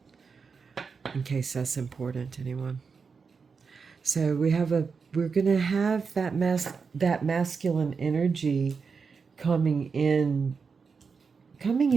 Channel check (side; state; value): left; quieter; 5.3 dB